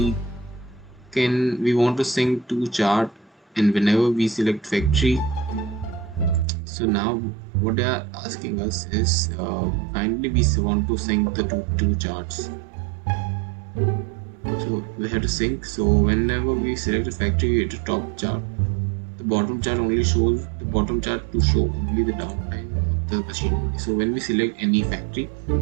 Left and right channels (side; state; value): left; drops out; at 6.5 s